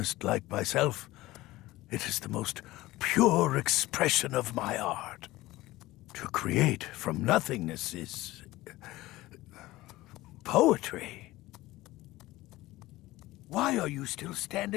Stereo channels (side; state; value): right; quieter; 18.0 dB